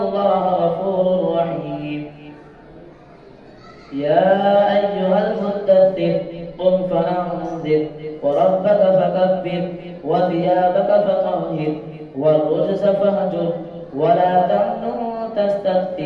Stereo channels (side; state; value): both; identical; correlation 1.00